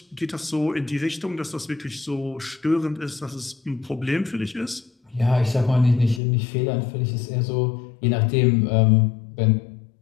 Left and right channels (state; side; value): drops out; right; at 6.2 s